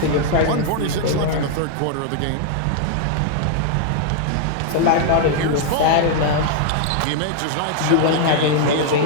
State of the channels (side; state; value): both; different; correlation 0.00